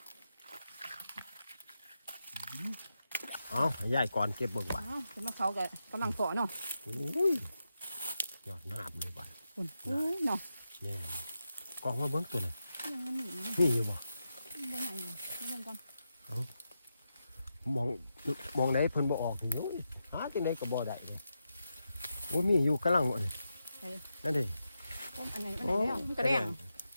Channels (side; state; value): both; inverted; correlation -0.88